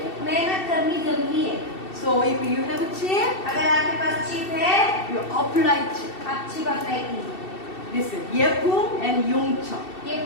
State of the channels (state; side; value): late; right; 2.7 ms